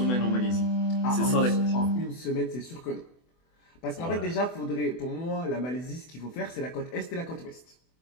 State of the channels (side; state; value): right; late; 24 ms